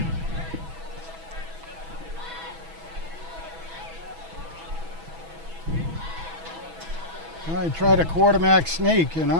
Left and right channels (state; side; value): late; left; 6.1 ms